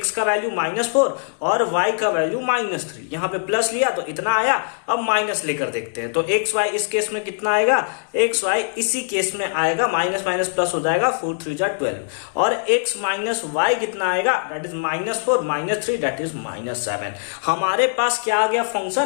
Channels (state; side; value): silent; right; digital silence